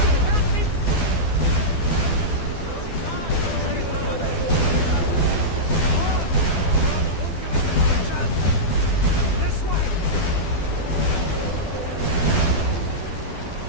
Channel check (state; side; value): late; right; 12 ms